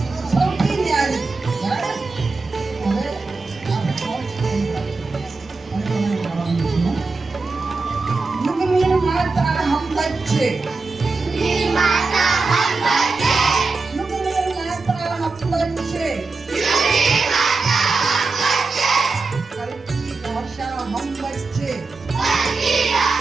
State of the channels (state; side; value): quieter; left; 3.9 dB